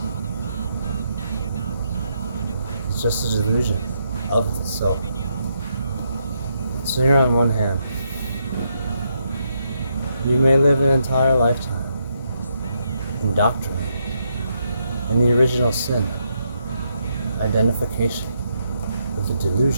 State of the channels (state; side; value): inverted; both; correlation -0.78